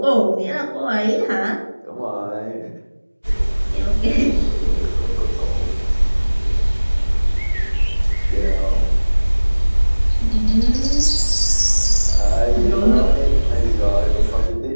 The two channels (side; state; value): both; inverted; correlation -1.00